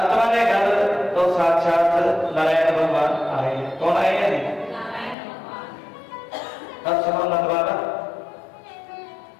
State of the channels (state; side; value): drops out; right; at 5.2 s